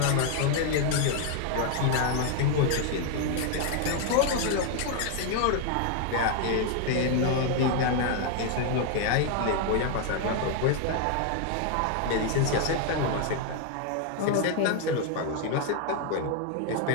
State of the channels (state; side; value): different; both; correlation 0.00